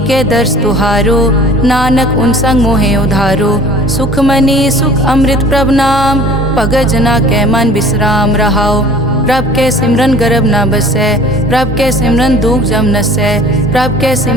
दर्श तुहारो नानक उन संग मोहे उधारो। सुखमनी सुख अमृत प्रभ नाम भगत जना कै मन विश्राम रहाओ। प्रभ के सिमरन गर्भ न बसै प्रभ के सिमरन दुख जम नसै। प्रभ के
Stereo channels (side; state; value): both; normal; correlation 0.47